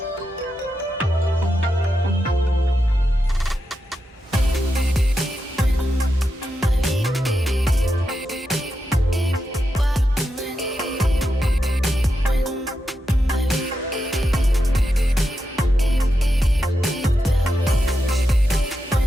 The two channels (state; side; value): normal; both; correlation 0.87